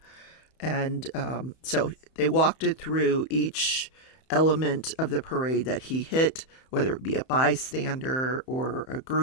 And so they walked it through each element of the parade that he hit, whether it be a bystander or a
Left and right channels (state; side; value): late; right; 31 ms